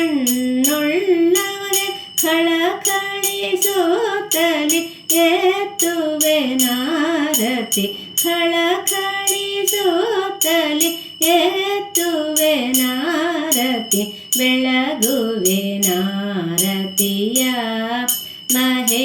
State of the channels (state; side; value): identical; both; correlation 1.00